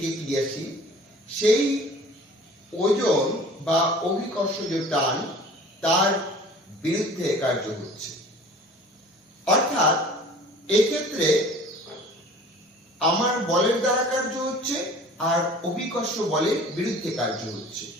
ক্রিয়াশীল, সেই ওজন বা অভিকর্ষজ টান তার বিরুদ্ধে কার্য হচ্ছে। অর্থাৎ এক্ষেত্রে আমার বলের দ্বারা কার্য হচ্ছে আর অভিকর্ষ বলের বিরুদ্ধে কার্য হচ্ছে।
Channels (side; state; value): both; normal; correlation 0.46